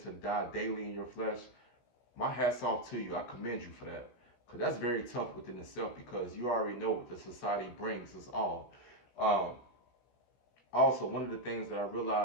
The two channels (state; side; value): late; right; 16 ms